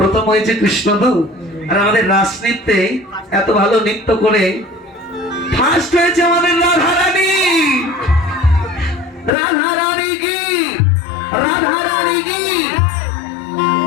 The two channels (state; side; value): drops out; right; at 9.3 s